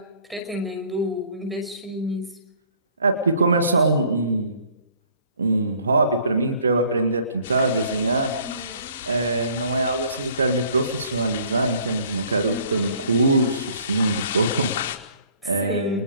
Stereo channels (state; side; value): inverted; both; correlation -0.57